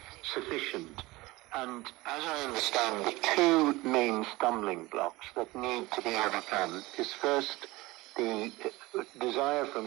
sufficient. And as I understand, the two main stumbling blocks that need to be overcome is first the desire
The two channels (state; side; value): quieter; left; 20.7 dB